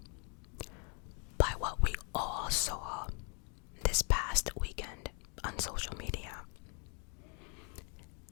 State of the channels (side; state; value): right; quieter; 37.7 dB